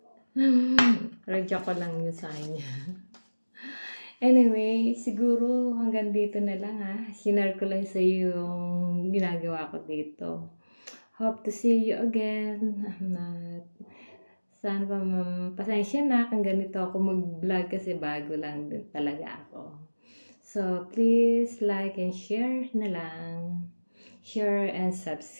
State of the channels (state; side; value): inverted; both; correlation -1.00